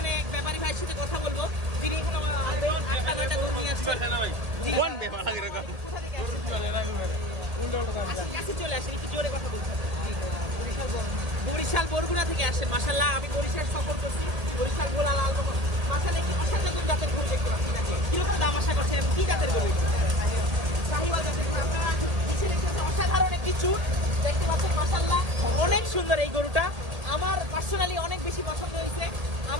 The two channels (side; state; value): left; late; 1.8 ms